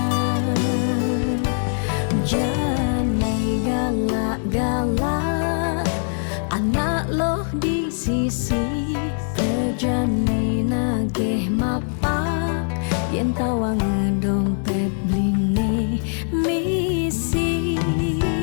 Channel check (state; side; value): silent; right; 64 dB below the other